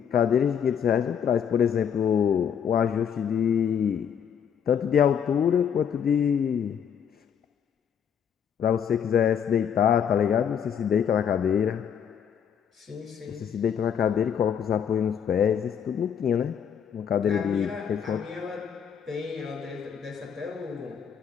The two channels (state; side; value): quieter; right; 8.0 dB